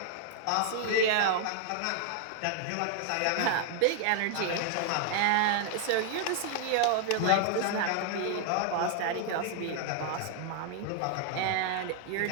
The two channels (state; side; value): different; both; correlation 0.00